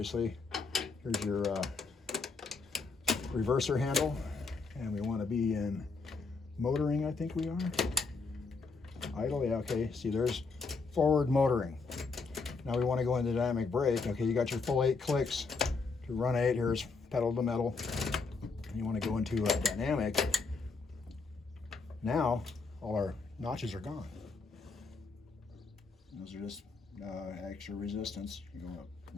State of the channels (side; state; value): right; quieter; 4.3 dB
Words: Here's your reverser handle. And we want to be in motoring, I think we are. Idle, yeah, okay. See, there's forward motoring. Now we want to go into dynamic brake. Okay, you got your full 8 clicks to run 8. Here's pedal to metal. you want to go into a dynamic, now all our notches are gone. Those are just extra resistance. You go up